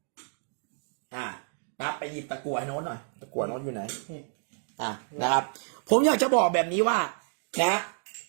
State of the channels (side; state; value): left; silent; 58 dB below the other